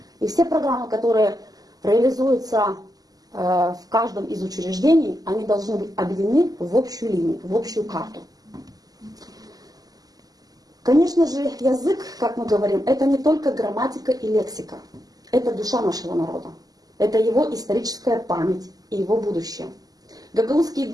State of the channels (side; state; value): left; late; 0.18 ms